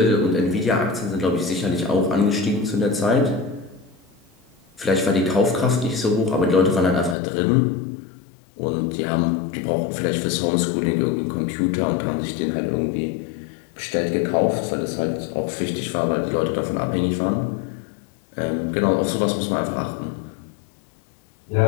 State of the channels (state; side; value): drops out; right; at 7.2 s